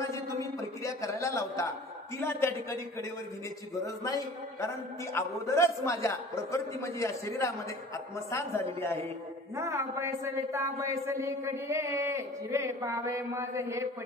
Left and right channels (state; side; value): normal; both; correlation 0.44